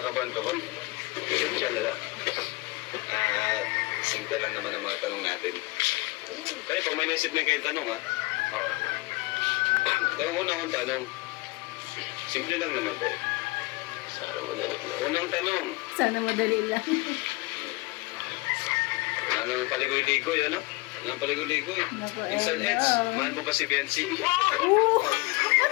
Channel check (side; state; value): right; quieter; 23.3 dB